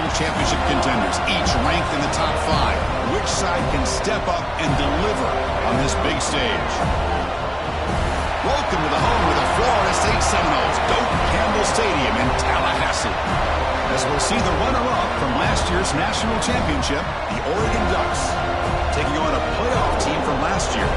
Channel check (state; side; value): identical; both; correlation 1.00